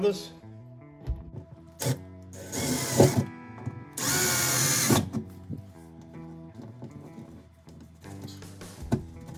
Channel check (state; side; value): identical; both; correlation 1.00